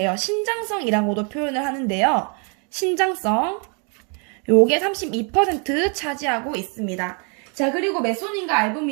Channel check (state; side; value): quieter; left; 36.9 dB